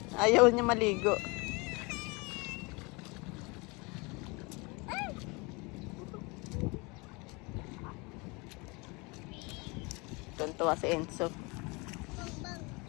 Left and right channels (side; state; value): right; quieter; 27.6 dB